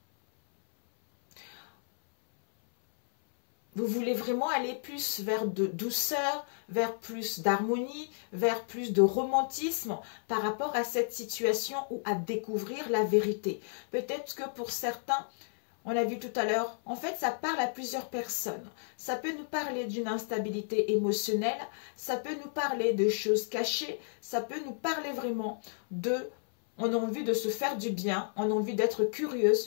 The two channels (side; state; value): right; silent; 57 dB below the other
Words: vous voulez vraiment aller plus vers de douceur, vers plus d'harmonie, vers plus de romantisme par rapport à cette situation ou à découvrir la vérité. Peut-être que pour certains, on a vu tout à l'heure, en fait, ça parle à plusieurs personnes. Ça peut nous parler d'une instabilité émotionnelle, ça peut nous parler de choses cachées, ça peut nous parler vraiment de... on a envie de se faire du bien, on a envie d'être